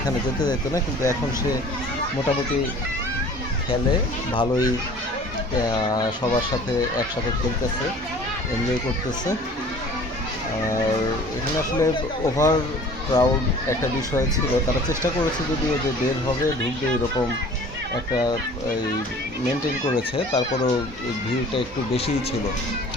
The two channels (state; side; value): normal; both; correlation 0.47